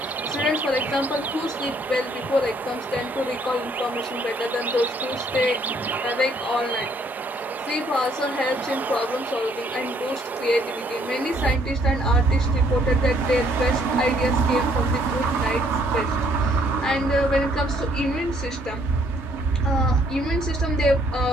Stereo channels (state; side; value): normal; both; correlation 0.65